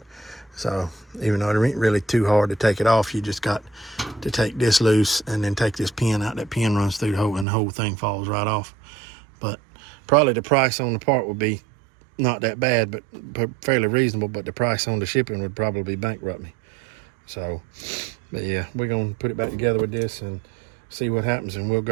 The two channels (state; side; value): drops out; left; at 7.5 s